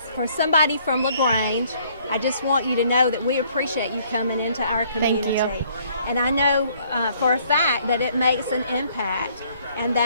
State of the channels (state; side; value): inverted; both; correlation -0.63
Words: for somebody from LaGrange, I just want you to know that we appreciate you coming into our community. Thank you. And I know for a fact that it makes an impact and